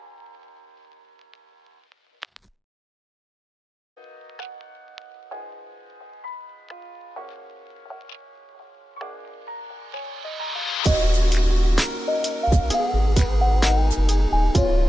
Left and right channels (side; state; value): both; normal; correlation 0.93